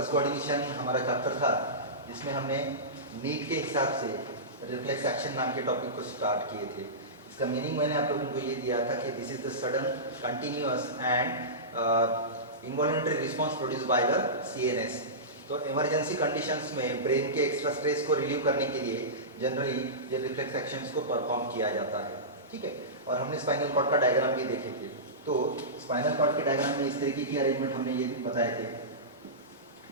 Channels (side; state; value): both; normal; correlation -0.19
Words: कोऑर्डिनेशन हमारा चैप्टर था जिसमें हमने नीट के हिसाब से रिफ्लेक्स एक्शन नाम के टॉपिक को स्टार्ट किए थे। इसका मीनिंग मैंने आप लोगों को ये दिया था कि this is the sudden continuous and involuntary response produce by the CNS. तो इमरजेंसी कंडीशंस में ब्रेन के एक्स्ट्रा स्ट्रेस को रिलीव करने के लिए जनरली ये रिफ्लेक्स एक्शंस को परफॉर्म किया जाता है। ठीक है, और हमने स्पाइनल कॉर्ड का डायग्राम भी देखे थे। तो स्पाइनल कॉर्ड के डायग्राम में इस तरीके की अरेंजमेंट हमने ये बताए थे